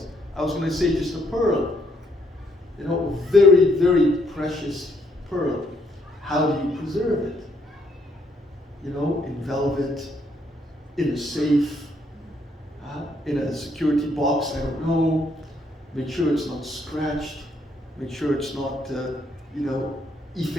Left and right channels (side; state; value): both; normal; correlation 0.71